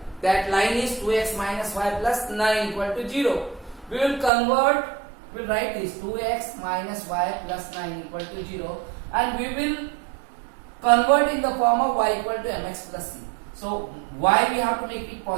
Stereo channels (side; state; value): left; drops out; at 4.3 s